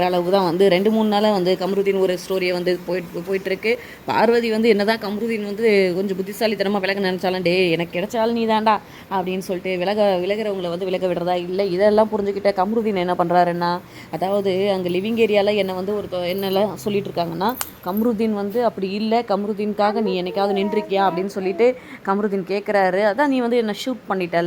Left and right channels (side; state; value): both; identical; correlation 1.00